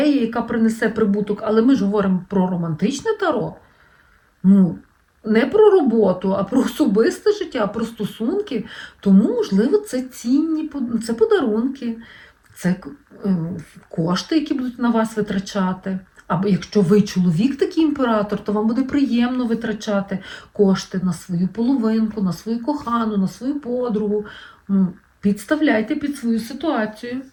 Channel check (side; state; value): both; identical; correlation 1.00